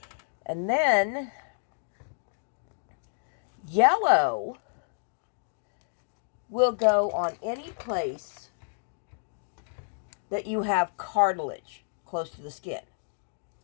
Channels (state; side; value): silent; right; digital silence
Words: And then yellow will go on any place that you have cartilage close to the skin.